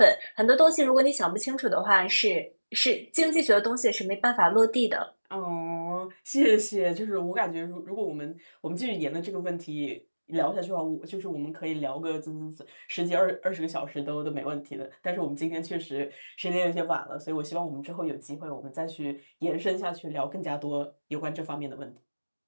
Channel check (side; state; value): both; inverted; correlation -1.00